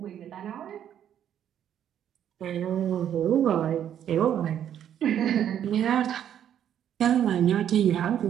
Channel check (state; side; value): quieter; left; 9.9 dB